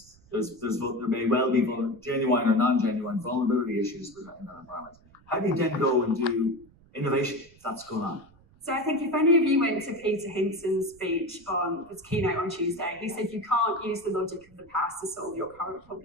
there may well be genuine or non-genuine vulnerability issues in that environment. How do you then go and do innovation if that's going on? So I think if any of you went to Peter Hinson's speech on his keynote on Tuesday, he said you can't use the logic of the past to solve your current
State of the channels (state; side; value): noise; right; rumble, 28 dB below the sound